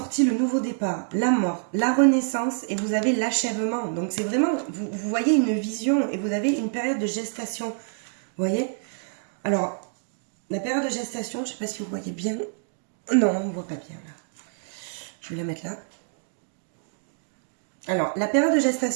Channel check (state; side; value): silent; left; digital silence